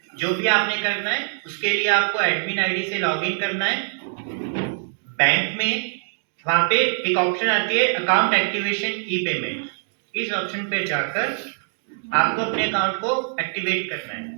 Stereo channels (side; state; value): left; silent; digital silence